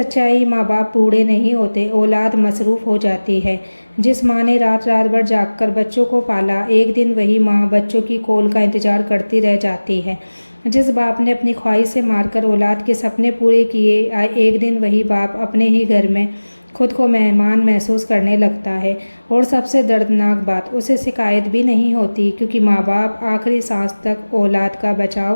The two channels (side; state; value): both; inverted; correlation -1.00